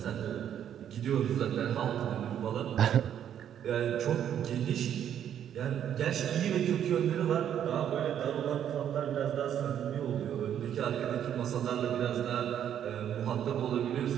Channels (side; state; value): left; quieter; 9.7 dB